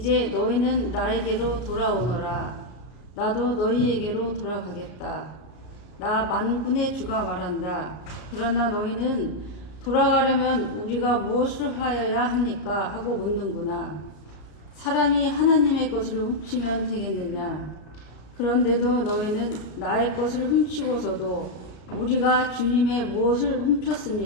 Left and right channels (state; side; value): late; right; 33 ms